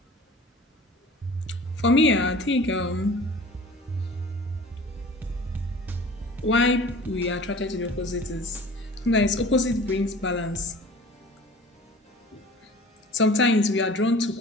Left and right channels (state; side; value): normal; both; correlation 0.44